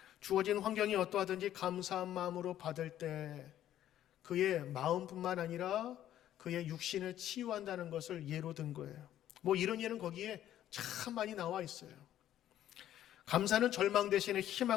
주어진 환경이 어떠하든지 감사한 마음으로 받을 때 그의 마음뿐만 아니라 그의 육신을 치유한다는 것을 예로 든 거예요. 뭐 이런 예는 거기에 참 많이 나와 있어요. 감사는 절망 대신에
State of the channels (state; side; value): quieter; right; 12.0 dB